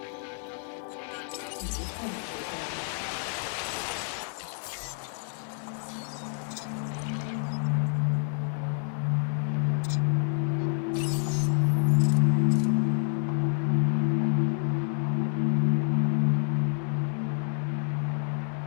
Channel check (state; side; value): silent; right; 59 dB below the other